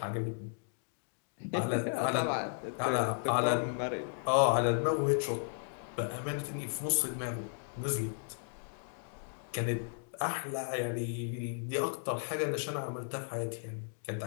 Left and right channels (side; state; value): right; silent; digital silence